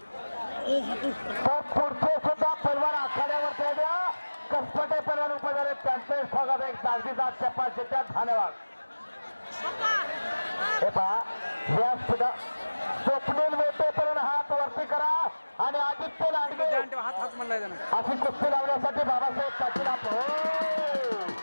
तर पुढचे सुद्धा पैलवान आखाड्यावरती आल्या. कसपटे पैलवान उपस्थित झाले, त्यांचे स्वागत आहे. दागदीदार चपाशीच्या धन्यवाद. हे पहा, या सुद्धा स्वप्नील वेटे पर्यंत हात वरती करा आणि आदित्य लांडगे हात म्हणलाय त्यानं अशी कुस्ती लावण्यासाठी बाबासाहेब पाटील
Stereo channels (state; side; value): inverted; both; correlation -1.00